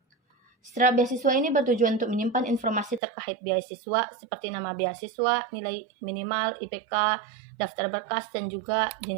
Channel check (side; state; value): left; drops out; at 3.0 s